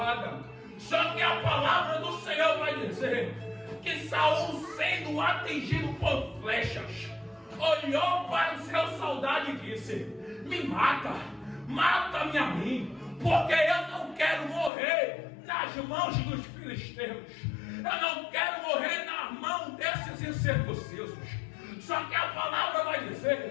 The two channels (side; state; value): right; drops out; at 14.7 s